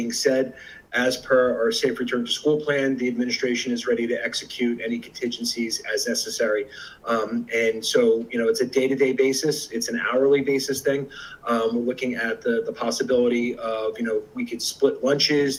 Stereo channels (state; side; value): identical; both; correlation 1.00